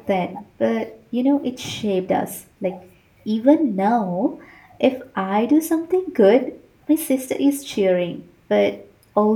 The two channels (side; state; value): both; identical; correlation 1.00